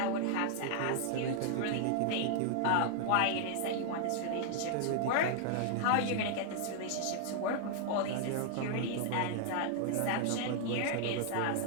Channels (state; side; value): different; both; correlation 0.00